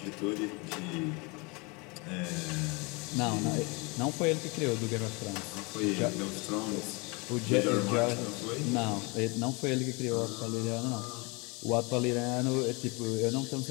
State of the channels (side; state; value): right; quieter; 28.6 dB